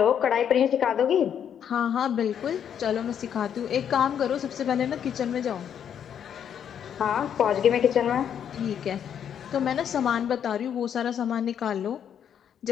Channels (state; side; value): quieter; right; 8.7 dB